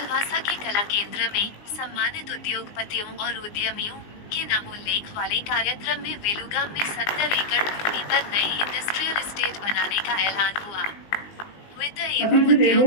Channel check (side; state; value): right; late; 19 ms